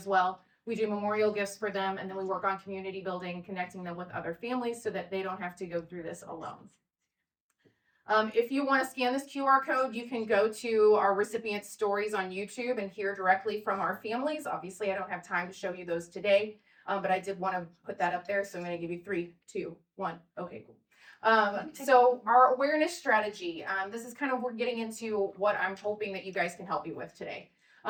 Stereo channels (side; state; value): both; identical; correlation 1.00